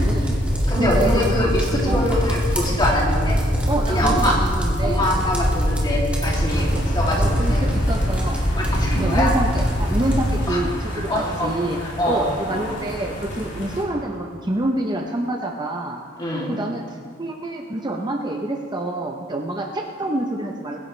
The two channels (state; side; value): normal; both; correlation 0.69